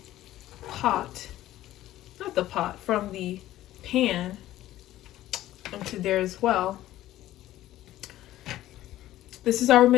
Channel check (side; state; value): right; quieter; 14.4 dB